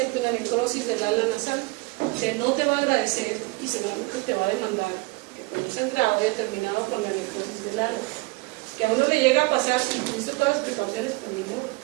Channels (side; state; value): left; quieter; 25.1 dB